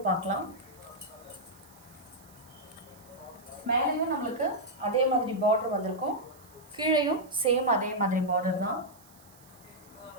பார்க்கலாம். மேலேயும் நம்மளுக்கு அதே மாதிரி பார்டர் வந்திருக்கும். கீழேயும் சேம் அதே மாதிரி பார்டர் தான்.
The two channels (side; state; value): right; noise; hiss, 25 dB below the sound